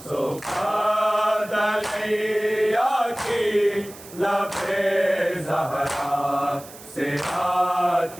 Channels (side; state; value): right; noise; hiss, 18 dB below the sound